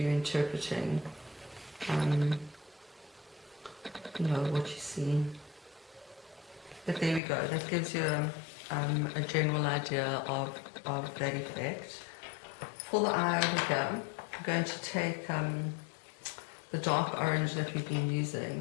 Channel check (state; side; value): drops out; right; at 7.2 s